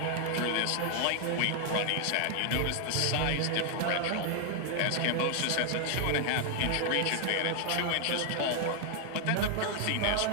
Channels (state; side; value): different; both; correlation 0.00